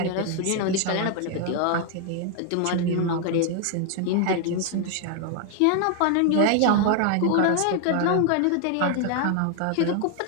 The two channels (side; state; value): both; different; correlation 0.00